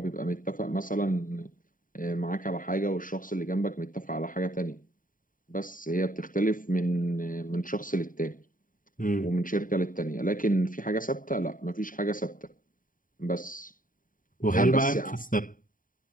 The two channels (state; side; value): late; right; 0.39 ms